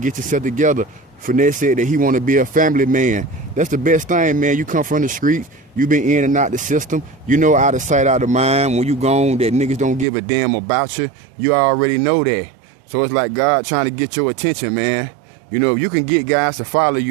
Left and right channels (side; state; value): left; drops out; at 10.1 s